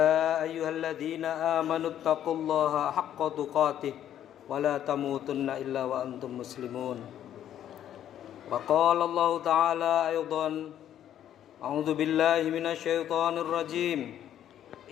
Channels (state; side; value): quieter; right; 10.8 dB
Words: أيها الذين آمنوا اتقوا الله حق تقاته ولا تموتن إلا وأنتم مسلمون وقال الله تعالى أيضا أعوذ بالله من الشيطان الرجيم